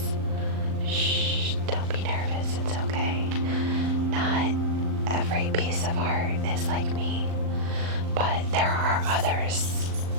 Shh, don't be nervous. It's okay. Not every piece of art is like me, but there are others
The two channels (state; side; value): late; left; 38 ms